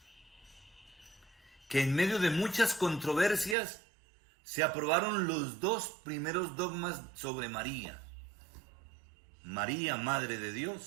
que en medio de muchas controversias se aprobaron los dos primeros dogmas sobre María. María, Madre de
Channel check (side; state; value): left; drops out; at 3.6 s